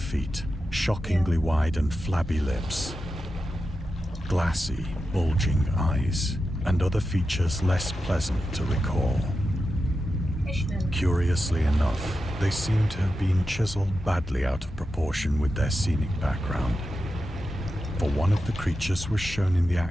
shockingly wide and flabby lips, glassy, bulging eyes, and other features less pleasant to recall. Fishman. Curiously enough, they seem to have been chiseled badly out of proportion with their scenic background. For one of the creatures was shown in the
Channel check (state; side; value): normal; both; correlation 0.90